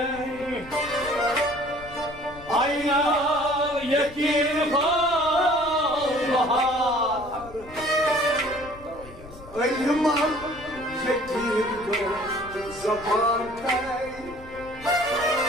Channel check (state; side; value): noise; left; rumble, 18 dB below the sound